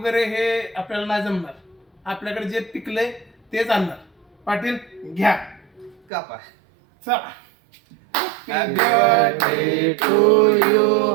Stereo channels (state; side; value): drops out; left; at 6.0 s